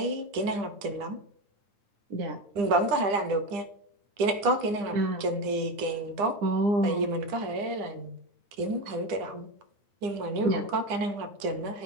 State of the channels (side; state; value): left; late; 9.9 ms